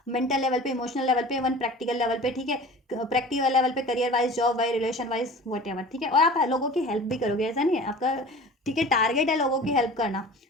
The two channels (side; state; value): both; normal; correlation 0.40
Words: मेंटल लेवल पे, इमोशनल लेवल पे, इवन प्रैक्टिकल लेवल पे, ठीक है, प्रैक्टिकल लेवल पे, career wise, job wise, relation wise, what ever, ठीक है। और आप लोगों की हेल्प भी करोगे, ऐसा नहीं है आपका, ठीक है, टारगेट है लोगों की हेल्प करना,